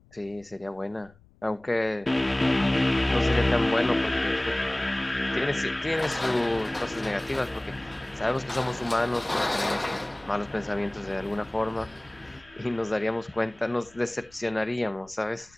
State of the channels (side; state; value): left; noise; rumble, 28 dB below the sound